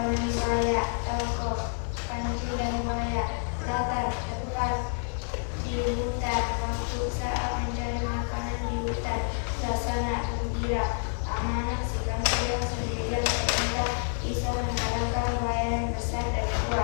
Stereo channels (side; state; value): right; silent; 59 dB below the other